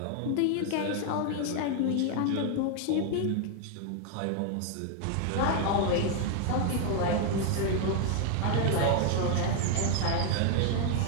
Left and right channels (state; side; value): different; both; correlation 0.00